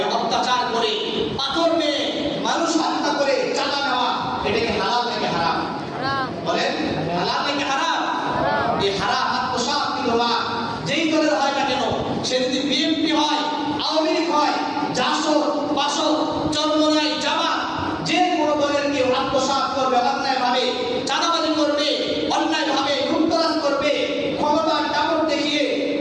অত্যাচার করে, পাথর মেরে, মানুষ হত্যা করে চাঁদা নেওয়া, এটা কি হালাল নাকি হারাম? বলেন, হালাল নাকি হারাম? এই হারাম আত্মসাৎ বিধবা যেই দলের হয় না কেন, সে যদি বিএনপি হয়, আওয়ামী লীগ হয়, জাসদ, বাসদ, চরমনাই, জামাত, যে কোনো দলের কেউ আত্মসাৎ করবে, অন্যায়ভাবে চাঁদাবাজি করবে, অন্যায়ভাবে লুটতরাজ করবে, ক্ষমতার দাপট দেখিয়ে,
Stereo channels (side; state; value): both; identical; correlation 1.00